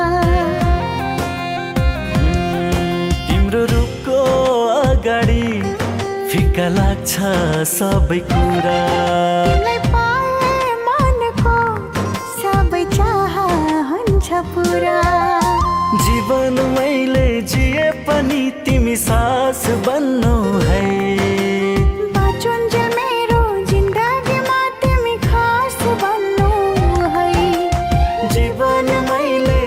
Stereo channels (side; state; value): both; identical; correlation 1.00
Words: तिम्रो रूपको अगाडि फिका लाग्छ सबै कुरा। तिमीलाई पाए मनको सबै चाह हुन्छ पुरा। जीवन मैले जिए पनि तिमी सास बन्नु है। बाँचुन्जेल मेरो जिन्दगीमा तिमी खास बन्नु है। जीवन मैले